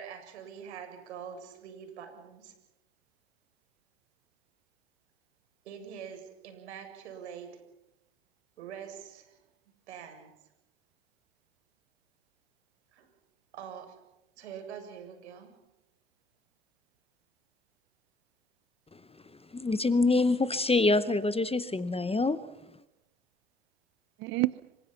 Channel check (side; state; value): both; normal; correlation 0.62